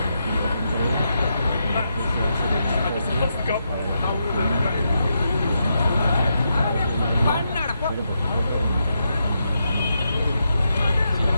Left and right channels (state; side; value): inverted; both; correlation -0.83